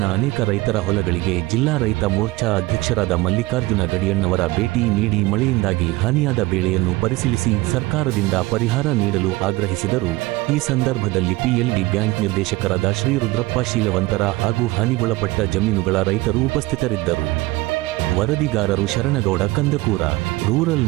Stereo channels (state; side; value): quieter; left; 20.5 dB